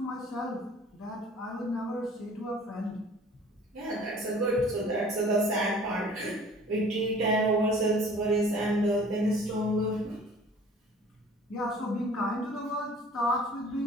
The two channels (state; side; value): normal; both; correlation 0.49